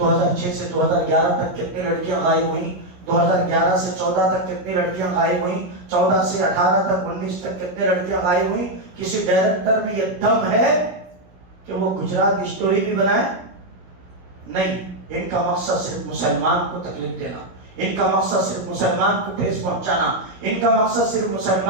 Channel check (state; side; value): late; left; 16 ms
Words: سے 2011 تک کتنی لڑکیاں غائب ہوئیں، 2011 سے 14 تک کتنی لڑکیاں غائب ہوئیں، 14 سے 18 تک 19 تک کتنی لڑکیاں غائب ہوئیں۔ کسی ڈائریکٹر میں یہ دم ہے کہ وہ گجرات اسٹوری بھی بنائے؟ نہیں۔ ان کا مقصد صرف مسلمان کو تکلیف دینا، ان کا مقصد صرف مسلمان کو ٹھیس پہنچانا، ان کا مقصد صرف